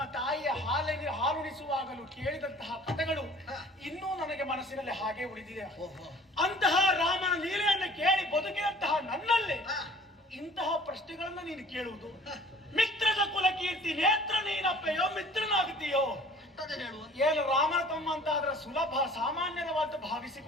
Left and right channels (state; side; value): normal; both; correlation 0.50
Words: ತಾಯಿಯ ಹಾಲುಣಿಸುವಾಗಲೂ ಕೇಳಿದಂತಹ ಕಥೆಗಳು ಇನ್ನೂ ನನಗೆ ಮನಸ್ಸಿನಲ್ಲಿ ಹಾಗೆ ಉಳಿದಿದೆ. ಅಂತಹ ರಾಮನ ಲೀಲೆಯನ್ನು ಕೇಳಿ ಬದುಕಿದಂತಹ ನನ್ನಲ್ಲಿ ಇಂತಹ ಪ್ರಶ್ನೆಗಳನ್ನ ನೀನು ಕೇಳುವುದು? ಮಿತ್ರದ ಕುಲ ಕೀರ್ತಿ ನೇತ್ರ ನೀನಪ್ಪೆಯೋ ಮಿತ್ರನಾಗುತ್ತೀಯೋ? ಏನು ರಾಮನ ತಮ್ಮ ಅಂತ ಆದ್ರೆ ಸುಲಭ ಸಾಮಾನ್ಯವಾದ